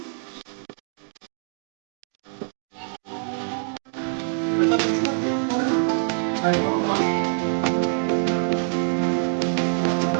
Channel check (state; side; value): silent; left; digital silence